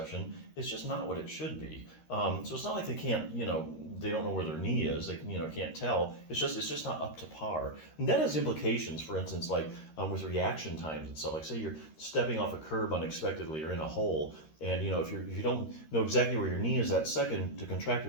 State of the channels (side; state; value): right; late; 13 ms